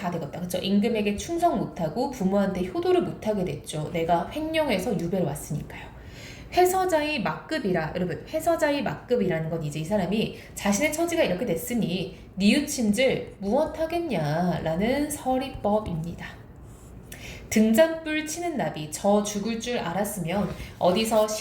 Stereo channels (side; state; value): both; identical; correlation 1.00